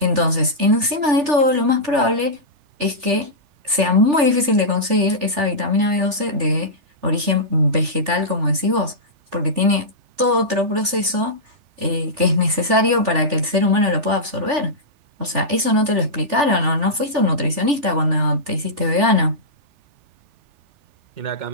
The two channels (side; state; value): left; late; 3.4 ms